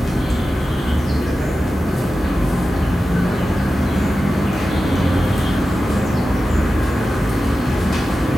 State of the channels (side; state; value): both; normal; correlation 0.93